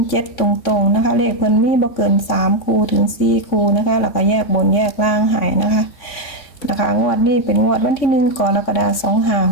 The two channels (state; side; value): late; right; 3.6 ms